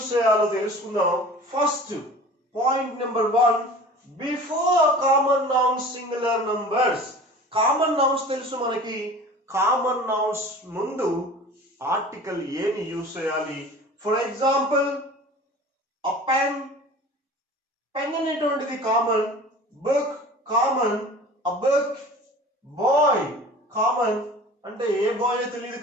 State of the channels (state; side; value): normal; both; correlation 0.41